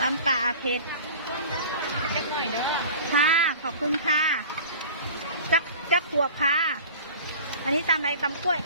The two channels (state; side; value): inverted; both; correlation -0.40